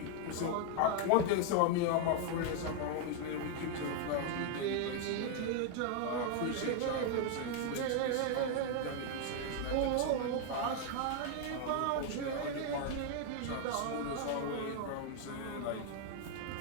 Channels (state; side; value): different; both; correlation 0.00